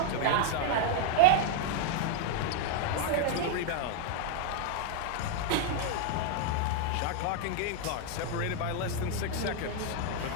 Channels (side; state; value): both; different; correlation -0.01